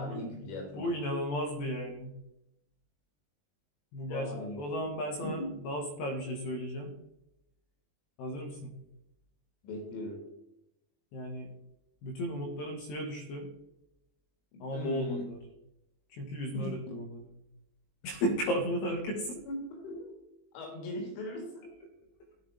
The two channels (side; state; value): right; late; 21 ms